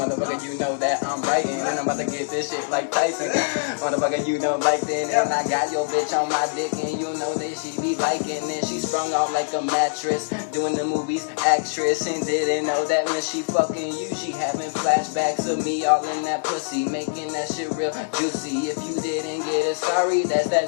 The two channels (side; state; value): right; silent; digital silence